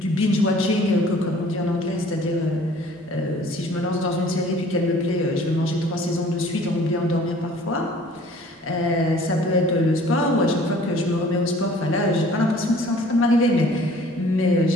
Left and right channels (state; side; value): normal; both; correlation 0.52